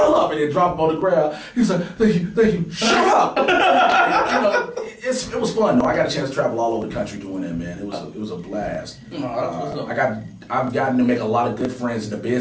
up, and then drop him on the ground. He's like, thank you, shut up. You know, it was fun, though. I got a chance to travel all over the country doing that, man. It was a blast. I've gotten to make a lot of good friends in the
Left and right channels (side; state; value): both; identical; correlation 1.00